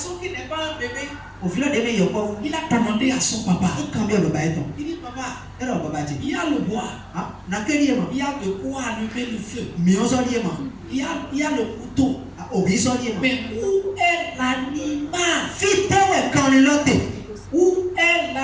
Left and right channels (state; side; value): identical; both; correlation 1.00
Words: qui n'est pas un bébé, il a demandé à son papa. Il dit papa, il y a le bois, il y a de quoi allumer le feu, il y a le couteau. Mais où est l'animal? Où est